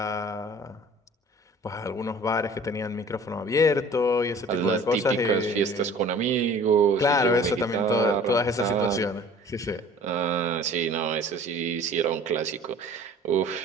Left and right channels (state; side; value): normal; both; correlation 0.47